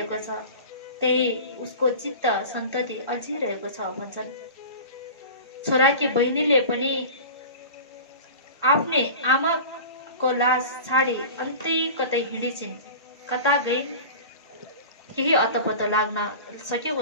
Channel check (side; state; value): both; inverted; correlation -0.35